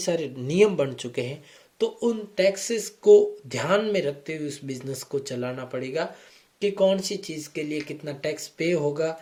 नियम बन चुके हैं। तो उन टैक्सेस को ध्यान में रखते हुए उस बिजनेस को चलाना पड़ेगा कि कौन सी चीज़ के लिए कितना टैक्स पे होगा।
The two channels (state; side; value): identical; both; correlation 1.00